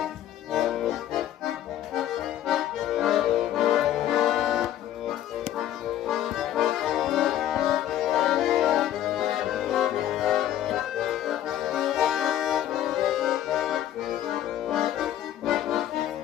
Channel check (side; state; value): right; quieter; 11.9 dB